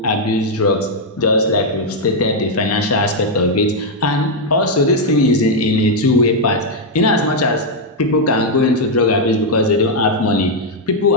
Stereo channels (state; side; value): normal; both; correlation -0.01